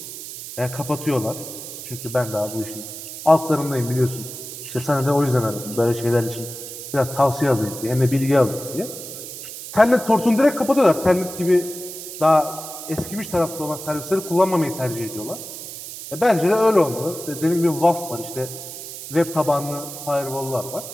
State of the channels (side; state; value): right; noise; hiss, 11 dB below the sound